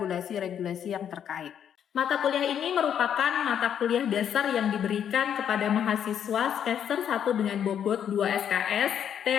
yang terkait. Mata kuliah ini merupakan mata kuliah dasar yang diberikan kepada mahasiswa semester 1 dengan bobot 2 SKS,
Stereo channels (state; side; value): quieter; right; 9.0 dB